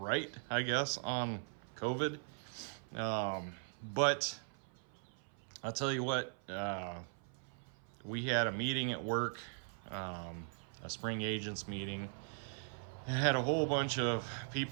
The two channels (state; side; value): silent; left; 51 dB below the other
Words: I guess, on COVID. But I'll tell you what, we had a meeting at work, a spring agents meeting. I had a whole bunch of